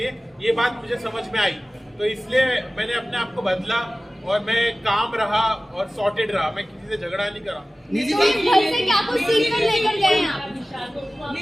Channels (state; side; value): normal; both; correlation 0.97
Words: ये बात मुझे समझ में आई। तो इसलिए मैंने अपने आप को बदला और मैं काम रहा और सॉर्टेड रहा, मैं किसी से झगड़ा नहीं करा। घर से क्या कुछ सीख कर लेकर गए हैं आप?